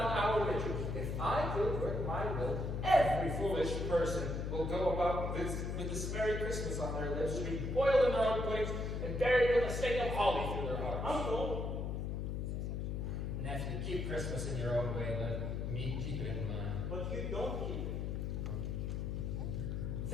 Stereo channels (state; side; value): noise; left; hum, 2 dB below the sound